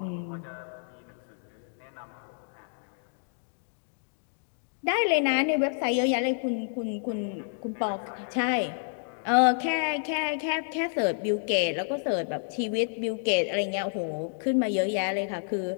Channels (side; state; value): right; silent; digital silence